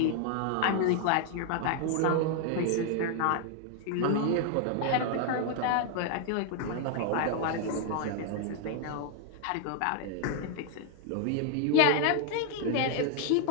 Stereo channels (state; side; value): different; both; correlation 0.00